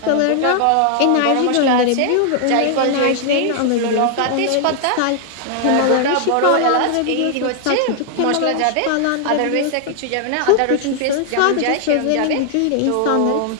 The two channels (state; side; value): different; both; correlation 0.00